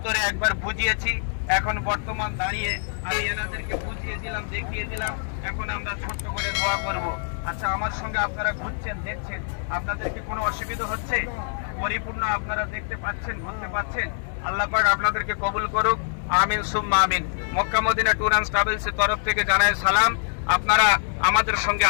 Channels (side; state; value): right; silent; 61 dB below the other